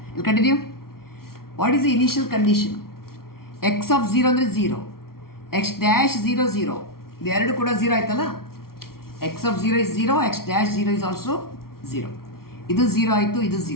ಇಲ್ಲಿ continue. What is the initial condition? X of 0 ಅಂದರೆ 0, X dash 0 0, ಇದು ಎರಡು ಕೂಡ 0 ಆಯ್ತಲ್ಲ. ಎಕ್ಸ್ ಆಫ್ 0 ಇಸ್ 0, ಎಕ್ಸ್ ಡ್ಯಾಶ್ 0 ಇಸ್ ಆಲ್ಸೋ 0. ಇದು 0 ಆಯಿತು, ಇದು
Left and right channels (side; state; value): right; late; 0.93 ms